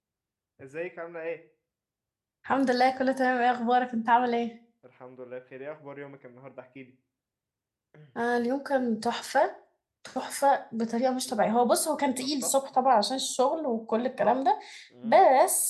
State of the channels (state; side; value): identical; both; correlation 1.00